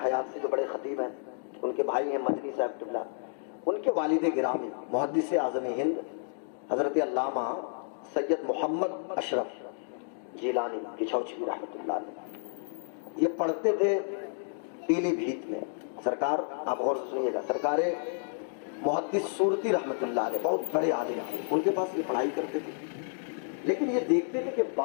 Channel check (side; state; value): right; silent; digital silence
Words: حیات سے جو بڑے خطیب ہیں، ان کے بھائی ہیں مدنی صاحب قبلہ، ان کے والد گرامی محدث اعظم ہند حضرت علامہ سید محمد اشرف جیلانی کچھوچی رحمۃ اللہ علیہ، یہ پڑھتے تھے پیلی بھیت میں. سرکار آپ غور سے سنیے گا، سرکار محدث صورتی رحمۃ اللہ علیہ بہت بڑے عالم ہیں، ان کے پاس یہ پڑھائی کرتے تھے. لیکن یہ دیکھتے تھے کہ